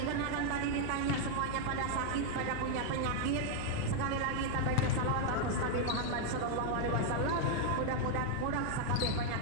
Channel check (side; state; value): both; different; correlation 0.00